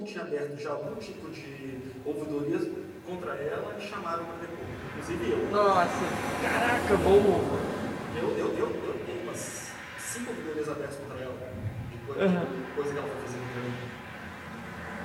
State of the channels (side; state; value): both; identical; correlation 1.00